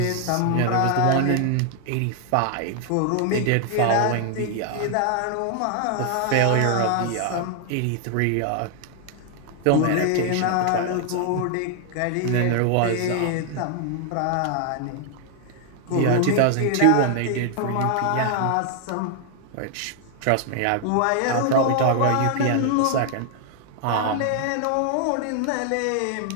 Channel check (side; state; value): both; different; correlation 0.00